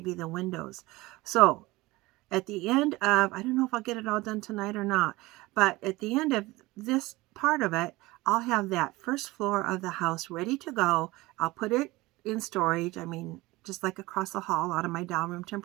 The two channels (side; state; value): left; quieter; 20.5 dB